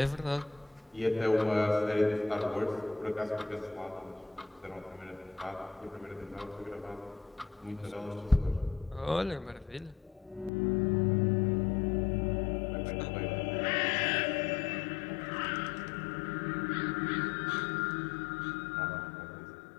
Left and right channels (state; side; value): drops out; right; at 10.5 s